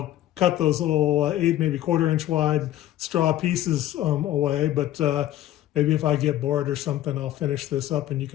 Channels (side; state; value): right; quieter; 13.4 dB